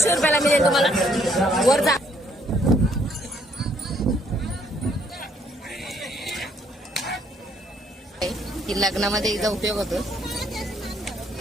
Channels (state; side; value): normal; both; correlation 0.67